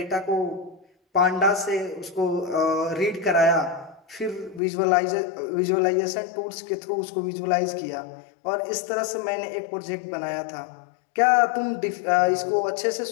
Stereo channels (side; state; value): right; drops out; at 4.6 s